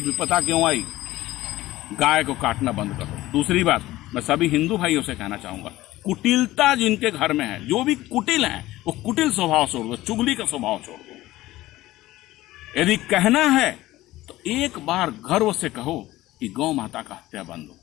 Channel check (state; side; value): quieter; right; 16.8 dB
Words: विपदा क्यों आई? गाय को काटना बंद करो। दूसरी बात, मैं सभी हिंदू भाइयों से कहना चाहूंगा, कुटिलता जिनके घर में है, जो भी कुटिल है, वो कुटिल स्वभाव छोड़ दो, चुगली का स्वभाव छोड़ दो। यदि कहना है तो एक बार गर्व से कहो कि गौ माता का हत्या बंद हो।